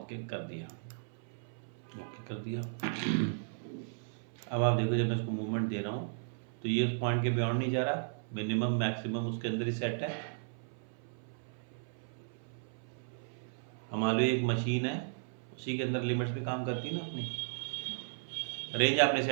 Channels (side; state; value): left; silent; 54 dB below the other